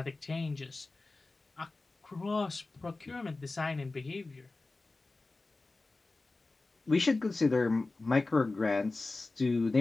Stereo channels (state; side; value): quieter; right; 3.4 dB